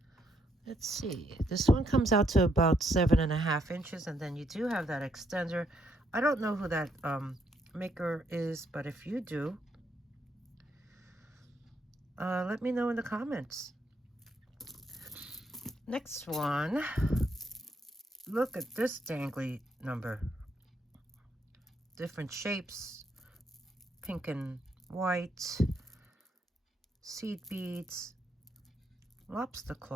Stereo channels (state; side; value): normal; both; correlation 0.74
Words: This one comes out to about 7.5 inches, and then you do have that extender. I don't know who that maker is, but if you do, let me know in the comments. Next one, look at this dangly number. Different shapes, pink and white, seed beads, lobster